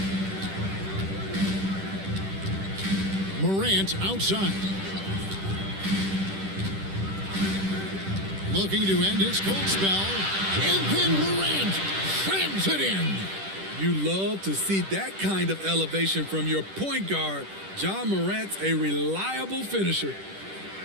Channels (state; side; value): late; left; 10 ms